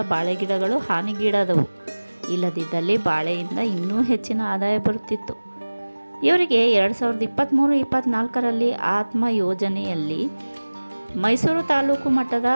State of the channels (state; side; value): inverted; both; correlation -1.00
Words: ಬಾಳೆ ಗಿಡಗಳು ಹಾನಿಗೀಡಾದವು. ಇಲ್ಲದಿದ್ದಲ್ಲಿ ಬಾಳೆಯಿಂದ ಇನ್ನೂ ಹೆಚ್ಚಿನ ಆದಾಯ ಬರುತ್ತಿತ್ತು. ಇವರಿಗೆ 2023-24ರಲ್ಲಿ ಆತ್ಮ ಯೋಜನೆಯಲ್ಲಿ ಮೈಸೂರು ತಾಲೂಕು ಮಟ್ಟದ